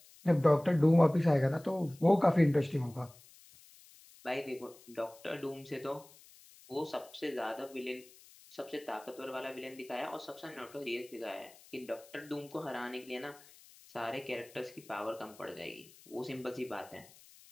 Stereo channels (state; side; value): noise; left; hiss, 23 dB below the sound